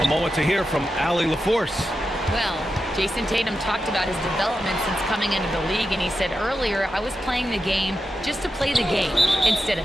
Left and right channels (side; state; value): both; normal; correlation 0.89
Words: A moment to hear from Allie LaForce. Well, Jason Tatum talked about his development since coming into the league, and he said earlier, I was playing the game just to play the game instead of